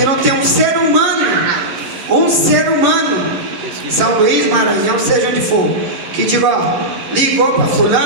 não tem um ser humano São Luís, Maranhão, seja onde for, que diga, ó, ligou para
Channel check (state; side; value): late; left; 11 ms